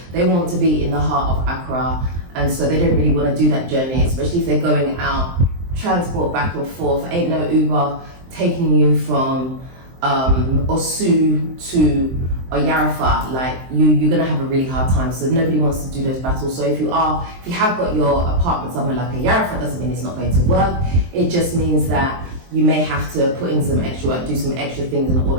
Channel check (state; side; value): late; left; 23 ms